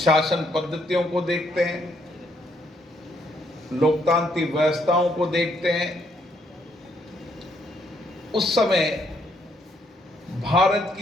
पद्धतियों को देखते हैं, लोकतांत्रिक व्यवस्थाओं को देखते हैं, उस समय भारत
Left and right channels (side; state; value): both; normal; correlation 0.72